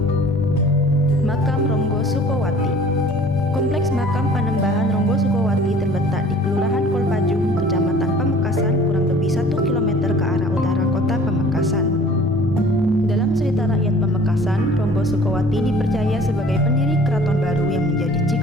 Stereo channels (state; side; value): normal; both; correlation 0.50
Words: Makam Ronggo Sukowati. Kompleks makam Panembahan Ronggo Sukowati terletak di Kelurahan Kolpajung, Kecamatan Pamekasan, kurang lebih 1 km ke arah utara kota Pamekasan. Dalam cerita rakyat Pamekasan, Ronggo Sukowati dipercaya sebagai pendiri keraton baru yang menjadi